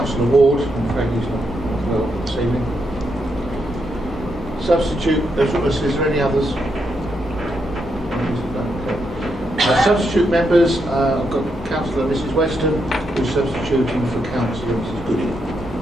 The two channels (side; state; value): both; normal; correlation 0.81